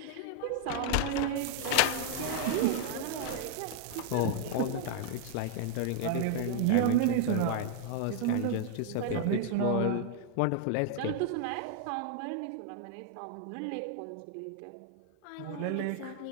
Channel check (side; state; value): both; different; correlation 0.00